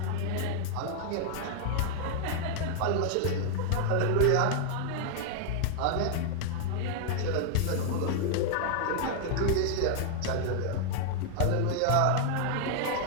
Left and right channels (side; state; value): both; different; correlation 0.00